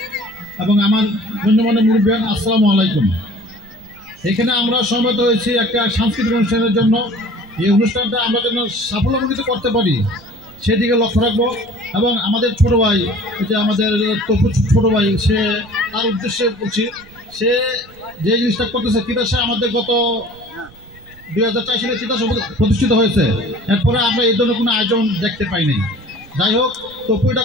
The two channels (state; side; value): noise; right; rumble, 24 dB below the sound